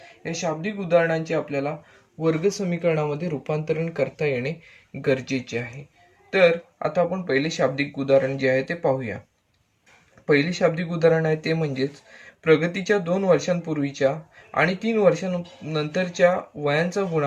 या शाब्दिक उदाहरणांचे आपल्याला वर्ग समीकरणामध्ये रूपांतरण करता येणे गरजेचे आहे. तर आता आपण पहिले शाब्दिक उदाहरण जे आहे ते पाहूया. पहिले शाब्दिक उदाहरण आहे ते म्हणजेच प्रगतीच्या 2 वर्षांपूर्वीच्या आणि 3 वर्षांनंतरच्या वयांचा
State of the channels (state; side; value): identical; both; correlation 1.00